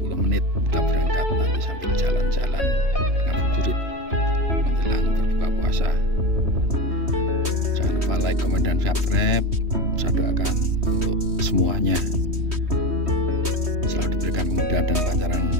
kita berangkat, nanti sambil jalan-jalan ngabuburit menjelang berbuka puasa. Jangan lupa like, komen, dan subscribe. Saya doakan untuk semuanya selalu diberikan kemudahan dan kelancaran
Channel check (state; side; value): late; left; 3.2 ms